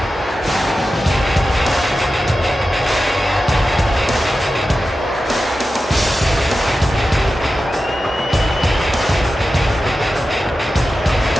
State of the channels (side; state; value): both; normal; correlation 0.93